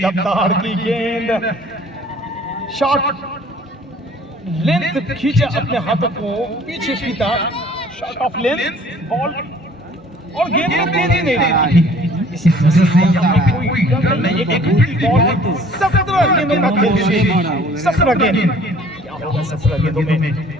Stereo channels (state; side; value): normal; both; correlation 0.53